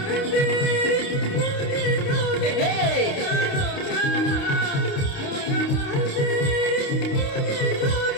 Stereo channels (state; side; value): late; right; 29 ms